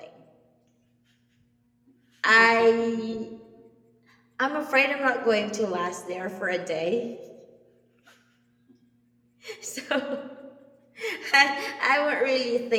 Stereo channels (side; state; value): both; identical; correlation 1.00